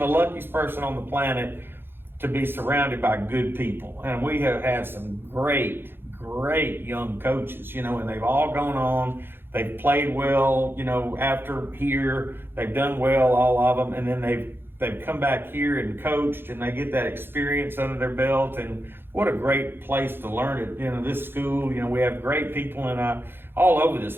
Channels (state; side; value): late; left; 0.10 ms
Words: luckiest person on the planet to be surrounded by good people. And we have had some great young coaches, and they've all gone on. They've played well, after here. They've done well, all of them. And then they've come back here and coached, and they get that experience under their belt. And what a great place to learn it. This school, we have great people all over this